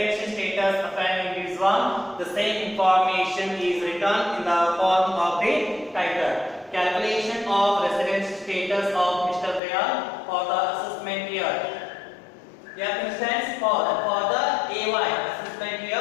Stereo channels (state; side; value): drops out; right; at 9.6 s